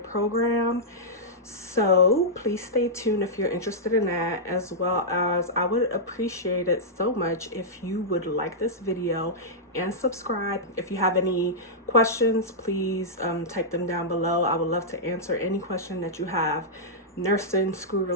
program. So please stay tuned if you're interested in that, as well as I would appreciate it so much if you would like this video and subscribe. If you have any questions, please type them down below. I would love to answer any question that you have, nursing, school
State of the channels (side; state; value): both; normal; correlation -0.10